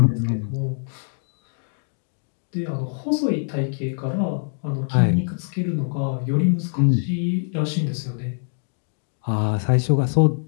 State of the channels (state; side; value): silent; right; digital silence